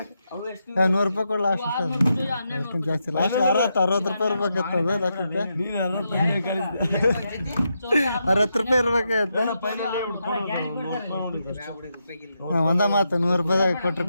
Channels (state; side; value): inverted; both; correlation -0.84